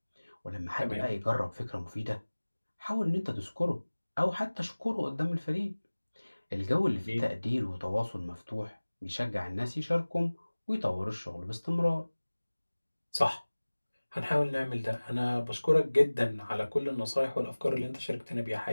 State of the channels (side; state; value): both; inverted; correlation -1.00